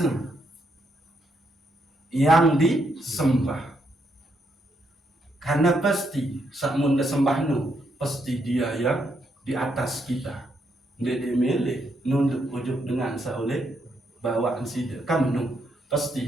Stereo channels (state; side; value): normal; both; correlation 0.77